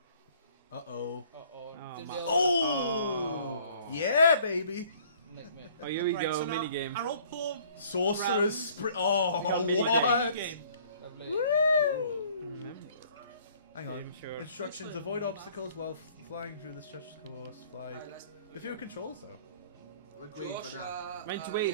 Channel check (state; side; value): inverted; both; correlation -0.56